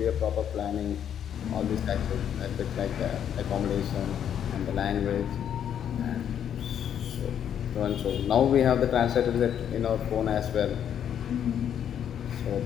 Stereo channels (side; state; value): right; quieter; 9.2 dB